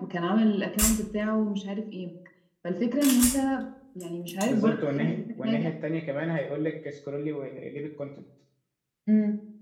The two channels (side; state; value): both; identical; correlation 1.00